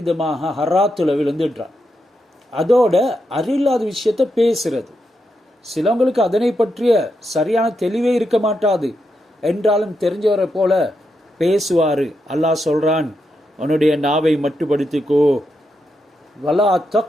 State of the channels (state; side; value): normal; both; correlation 0.84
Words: ஹராத்தில் விழுந்துடுறான். அதோட அறிவில்லாத விஷயத்தை பேசுறது. சிலவங்களுக்கு அதனை பற்றிய சரியான தெளிவே இருக்க மாட்டாது, என்றாலும் தெரிஞ்சவரை போல பேசுவார். அல்லாஹ் சொல்றான், உன்னுடைய நாவை மட்டுப்படுத்திக்கோ. வலா